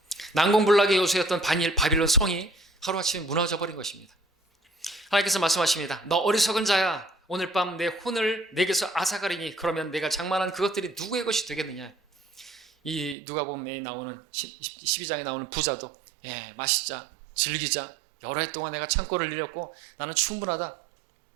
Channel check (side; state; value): left; drops out; at 13.2 s